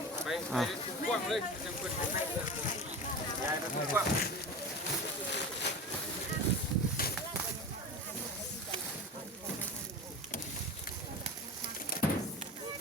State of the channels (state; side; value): normal; both; correlation 0.30